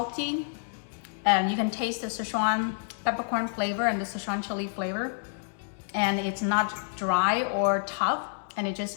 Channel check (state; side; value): silent; right; digital silence